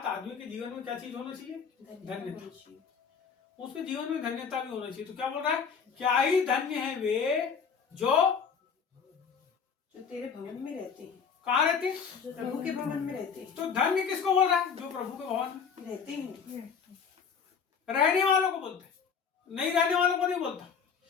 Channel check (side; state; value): right; quieter; 6.4 dB